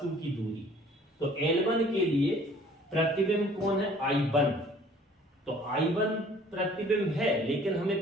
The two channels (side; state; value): both; normal; correlation 0.53